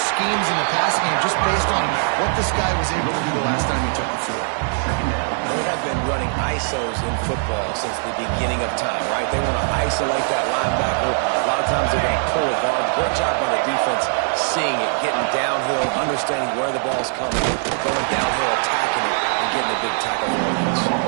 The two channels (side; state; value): left; silent; 62 dB below the other